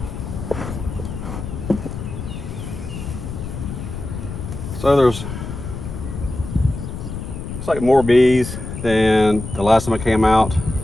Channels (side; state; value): left; noise; rumble, 8 dB below the sound